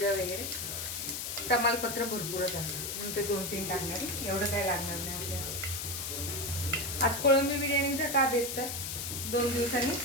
वगैरे, तमालपत्र भरपूरच असतं म्हणून ते 2-3 टाकणार आहे. एवढं काय लागणार नाही आपल्याला. आज कोळंबी बिर्याणीचा का बेत तर 2 दिवसांनी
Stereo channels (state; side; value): noise; left; hiss, 4 dB below the sound